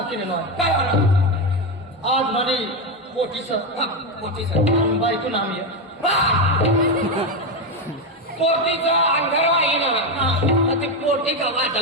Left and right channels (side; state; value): both; normal; correlation 0.10